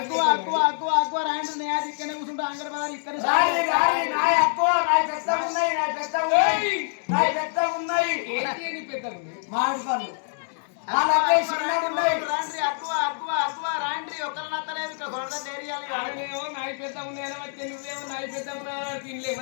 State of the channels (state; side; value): silent; right; digital silence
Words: అక్కువ అక్కువ అక్కువ రాయండి నేను ఇక్కడనే కూర్చుంటా అంగడి పదాలు ఇక్కడ నా ఎక్కువ నా పెద్ద ఉన్నాయి నా పెద్ద ఉన్నాయి నా పెద్ద ఉన్నాయి ఏంటి పెద్ద మామిడి పళ్ళు వాళ్ళ అబ్బాయి చిన్నగా ఉన్నాయి రాండ్రి అక్కువ అక్కువ అక్కువ రాండ్రి ఒక్కరు నత్తలేదు ఇక్కడ కొరత తేరియాలి ఆయనేమో నాయి పెద్ద ఉన్నాయని వచ్చి నువ్వేమో నాయి పెద్ద ఉన్నా తినలే